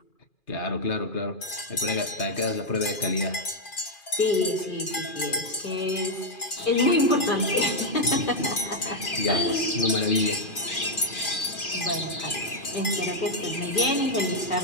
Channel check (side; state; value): right; late; 2.4 ms